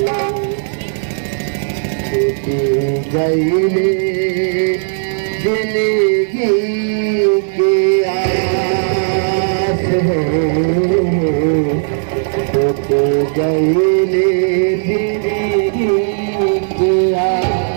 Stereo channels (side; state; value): left; silent; digital silence